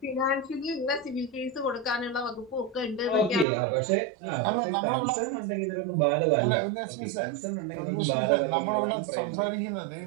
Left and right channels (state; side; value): drops out; left; at 3.5 s